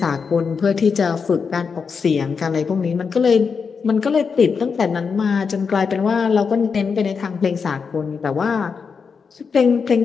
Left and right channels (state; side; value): quieter; right; 5.7 dB